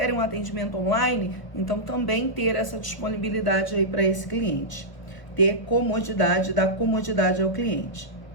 um atendimento online? Então, também ter essa disponibilidade aí para esse cliente. Ter comodidade, dar comodidade ao cliente.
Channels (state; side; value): late; right; 1.1 ms